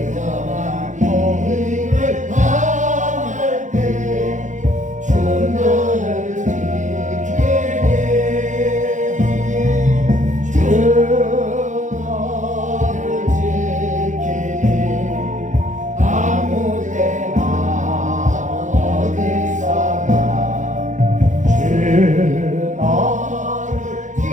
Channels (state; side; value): late; left; 0.36 ms